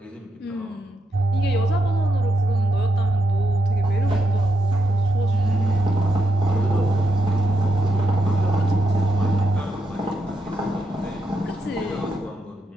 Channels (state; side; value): normal; both; correlation 0.83